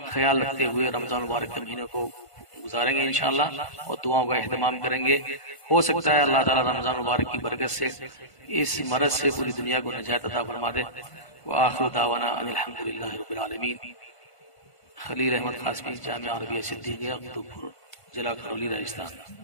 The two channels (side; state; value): right; late; 1.5 ms